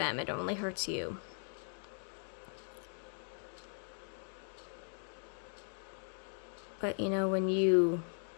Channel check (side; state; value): right; silent; 52 dB below the other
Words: it only hurts you. But, when you